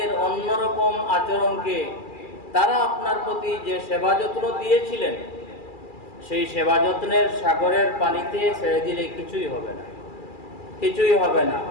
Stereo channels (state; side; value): late; right; 2.4 ms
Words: অন্যরকম আচরণকে তারা আপনার প্রতি যে সেবা যত্ন দিয়েছিলেন, সেই সেবা যত্নের সাগরের পানিতে ছেড়ে দিলে কিছুই হবে না, কিছুই হবে না।